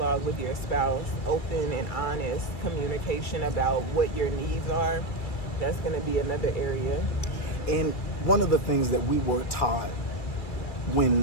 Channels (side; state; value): right; late; 2.3 ms